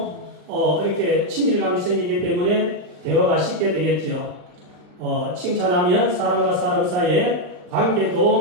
이렇게 친밀감이 생기기 때문에 대화가 쉽게 되겠죠. 칭찬하면 사람과 사람 사이의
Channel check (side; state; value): left; late; 39 ms